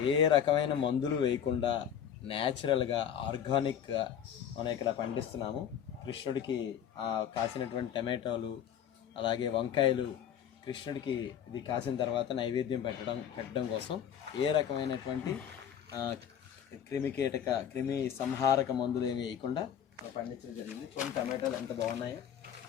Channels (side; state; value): right; quieter; 9.1 dB